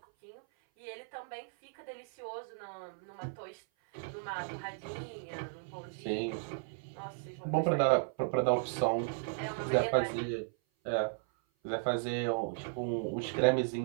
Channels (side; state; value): left; silent; 54 dB below the other